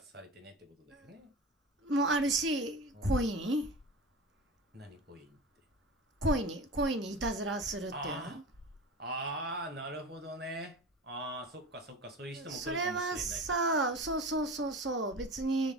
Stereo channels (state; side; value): normal; both; correlation 0.32